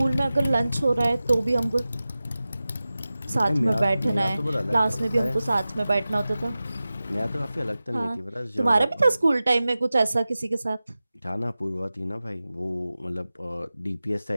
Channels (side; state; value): both; inverted; correlation -0.96